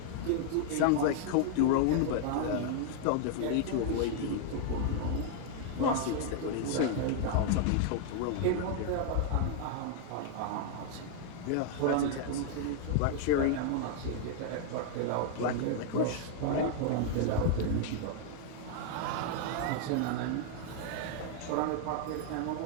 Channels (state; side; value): different; both; correlation -0.01